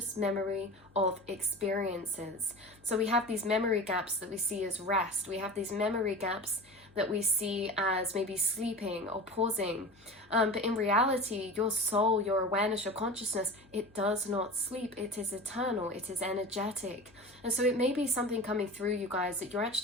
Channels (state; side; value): noise; left; hum, 29 dB below the sound